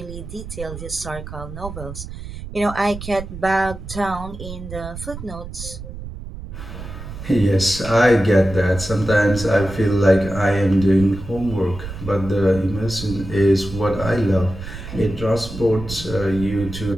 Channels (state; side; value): noise; right; rumble, 11 dB below the sound